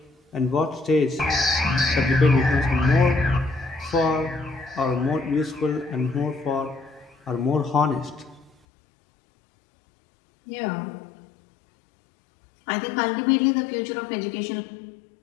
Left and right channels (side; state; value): right; drops out; at 8.5 s